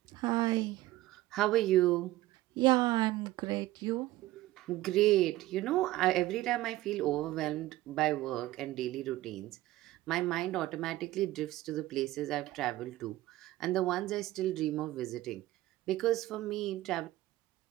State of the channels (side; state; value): left; quieter; 16.7 dB